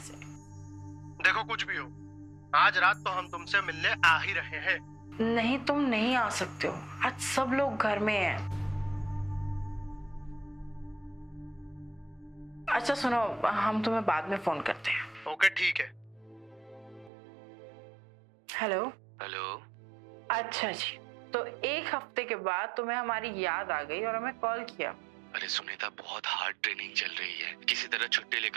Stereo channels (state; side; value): drops out; left; at 17.1 s